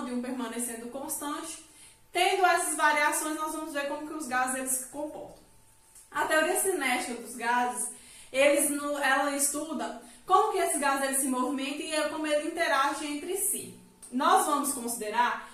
e um permanecendo constante, tendo essas variações, nós vamos ver como que os gases eles se comportam. A teoria cinética dos gases, ela estuda como que esses gases eles se movimentam e como eles interagem entre si. Nós vamos considerar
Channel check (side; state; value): both; identical; correlation 1.00